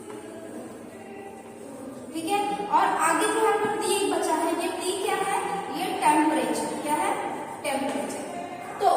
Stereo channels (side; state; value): both; identical; correlation 1.00